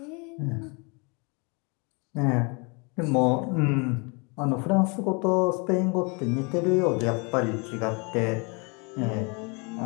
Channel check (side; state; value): right; quieter; 31.9 dB